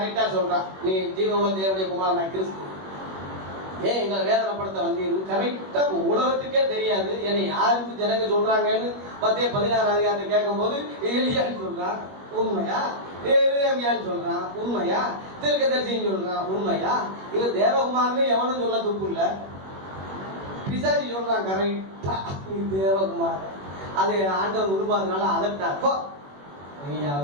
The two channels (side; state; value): left; late; 21 ms